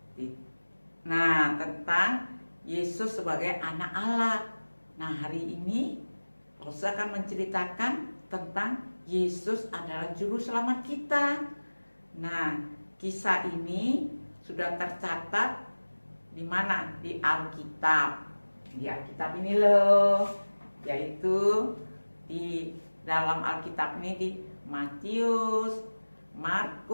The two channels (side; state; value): both; inverted; correlation -1.00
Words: Nah, tentang Yesus sebagai anak Allah. Nah, hari ini Lose akan menceritakan tentang Yesus adalah juru selamat kita. Nah, kisah ini sudah tercatat di mana? Di Alkitab. Di Alkitab ini loh, yaitu di dalam Alkitab ini di Matius,